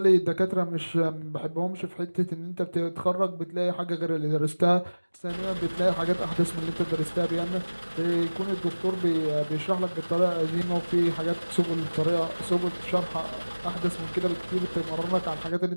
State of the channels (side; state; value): both; inverted; correlation -1.00